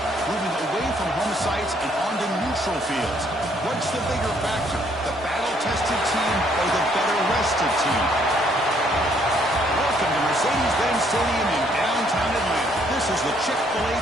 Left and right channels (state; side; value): normal; both; correlation 0.67